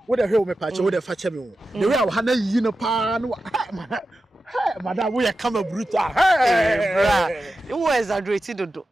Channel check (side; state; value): both; normal; correlation 0.92